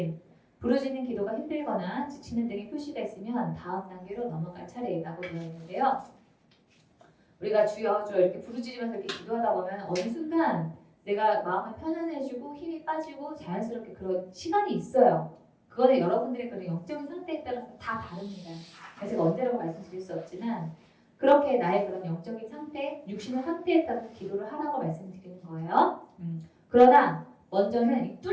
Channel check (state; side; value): identical; both; correlation 1.00